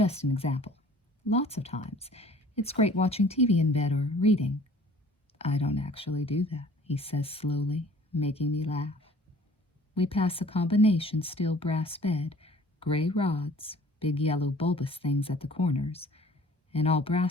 an example. Lots of times. It's great watching TV in bed or reading. I don't actually do that, he says slowly, making me laugh. We pass a combination steel brass bed, gray rods, big yellow bulbous things at the corners, An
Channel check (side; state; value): both; normal; correlation 0.51